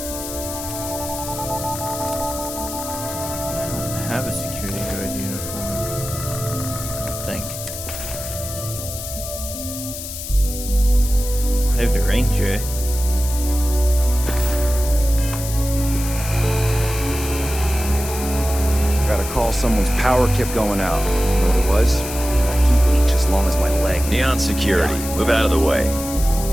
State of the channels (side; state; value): left; noise; hiss, 8 dB below the sound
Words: I don't have a security guard uniform. I don't think. I have the ranger. Gotta call, someone's power kept going out. You know what it was? A heat leech as long as my leg. Neon security. Move out of the way.